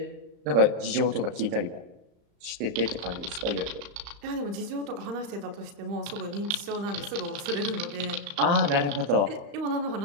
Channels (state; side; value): late; left; 35 ms